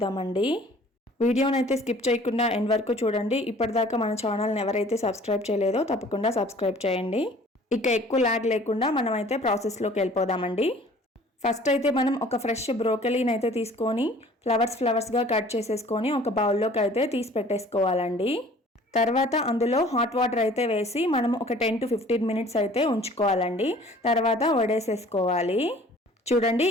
వీడియోనైతే స్కిప్ చేయకుండా ఎండ్ వరకు చూడండి. ఇప్పటిదాకా మన ఛానల్ని ఎవరైతే సబ్స్క్రైబ్ చేయలేదో తప్పకుండా సబ్స్క్రైబ్ చేయండి. ఇక ఎక్కువ లాగ్ లేకుండా మనమైతే ప్రాసెస్లోకి వెళ్ళిపోదామండి. ఫస్ట్ అయితే మనం ఒక ఫ్రెష్ బ్రోకలీని అయితే తీసుకొని ఫ్లవర్స్గా కట్ చేసేసుకొని ఒక బౌల్లోకి అయితే తీసి పెట్టేసుకోవాలండి. తర్వాత అందులో హాట్ వాటర్ అయితే వేసి మనం ఒక 10 to 15 మినిట్స్ అయితే ఉంచుకోవాలండి. తర్వాత వడేసేసుకోవాలి. చూడండి,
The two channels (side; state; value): both; normal; correlation 0.51